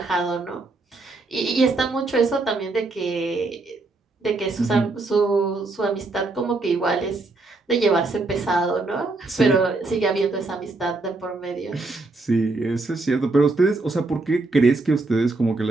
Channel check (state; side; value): quieter; left; 3.3 dB